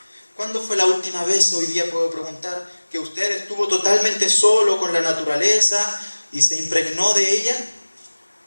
¿Cuándo fue la última vez, hoy día puedo preguntar, que usted estuvo totalmente solo con la naturaleza y se impregnó de ella?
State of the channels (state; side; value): inverted; both; correlation -1.00